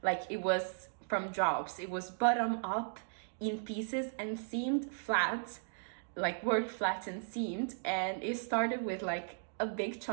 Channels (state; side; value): silent; left; digital silence